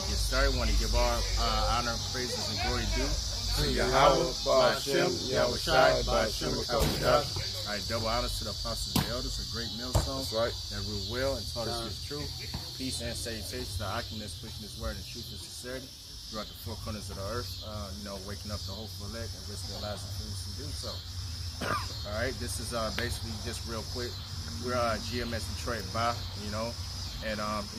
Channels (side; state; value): both; identical; correlation 1.00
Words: get started, want to give our honor, praises, and glory due to Yahweh, Ba'ashem, Yahushai, Ba'ashem, Yahushai. All right. Double honors to the apostles and elders, a great millstone. That's right. That rule well and taught us His truth. Peace and salutations to Achaemen's pushing His word in truth and sincerity throughout the four corners of the earth. Waking up the hopeful elect and risk their lives and fools to do so. All right, this is basically just real quick. We're GMS Detroit by, and a